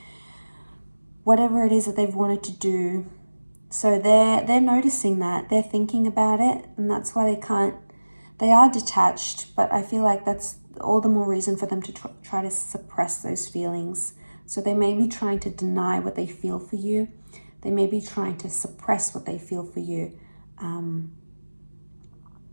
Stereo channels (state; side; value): inverted; both; correlation -1.00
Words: whatever it is that they've wanted to do. So they're noticing that. They're thinking about it, and that's why they are detached, but I feel like that's all the more reason for them to try to suppress those feelings. So they may be trying to deny what they feel for you. They may be trying to suppress what they feel for you.